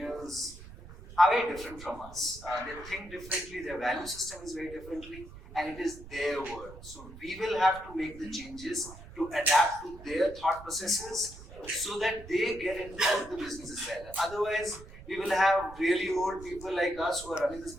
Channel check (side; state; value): right; noise; rumble, 16 dB below the sound